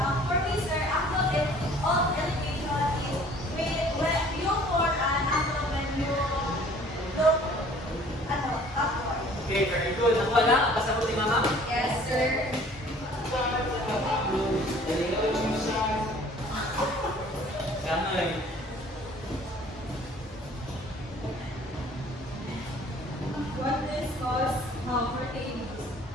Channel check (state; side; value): normal; both; correlation 0.53